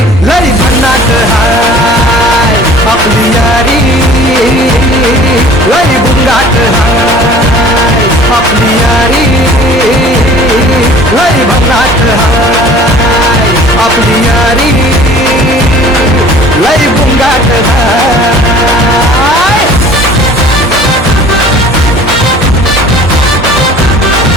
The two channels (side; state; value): both; normal; correlation 0.48